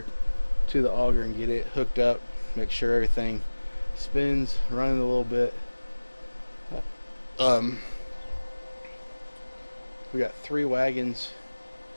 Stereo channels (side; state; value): both; inverted; correlation -1.00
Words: to the auger and get it hooked up. Make sure everything spins, running a little bit. We got 3 wagons.